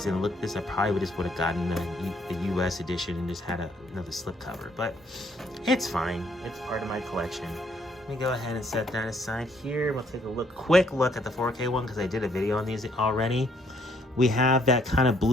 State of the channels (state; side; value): normal; both; correlation 0.68